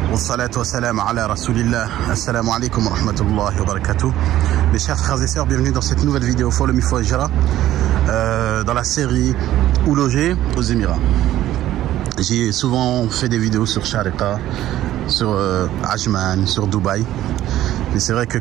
والصلاة والسلام على رسول الله. Assalamu alaikum wa rahmatullahi wa barakatuh. Mes chers frères et sœurs, bienvenue dans cette nouvelle vidéo Follow Me for Hijra dans la série Où loger aux Émirats. J'ai souvent fait des vidéos sur Sharqa, sur Ajman, sur Dubaï. Mais c'est vrai que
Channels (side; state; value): left; quieter; 13.6 dB